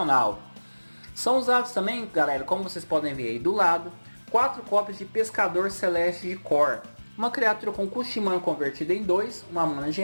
São usados também, galera, como vocês podem ver aí do lado, 4 cópias de Pescador Celeste de Kor. Uma criatura com custo de mana convertida em 2, uma mana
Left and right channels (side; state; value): both; inverted; correlation -1.00